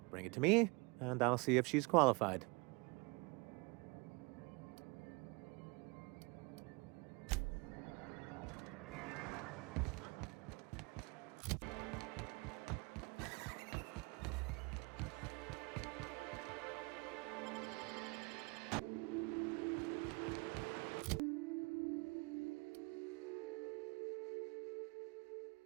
Bring it to me, and I'll see if she's qualified.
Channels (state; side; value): quieter; left; 27.7 dB